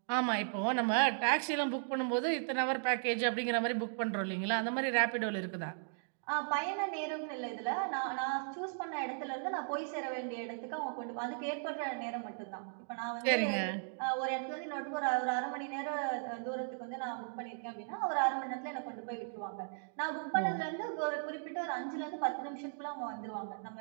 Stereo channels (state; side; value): silent; left; digital silence